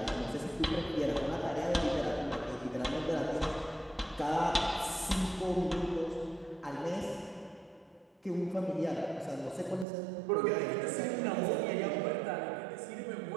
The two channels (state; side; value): drops out; left; at 9.9 s